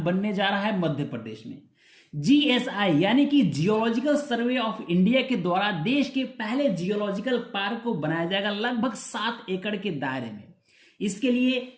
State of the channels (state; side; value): identical; both; correlation 1.00